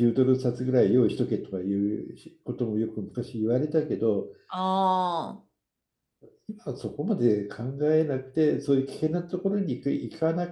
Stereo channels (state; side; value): identical; both; correlation 1.00